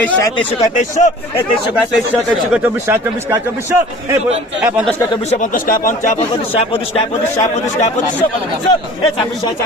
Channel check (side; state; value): both; normal; correlation 0.45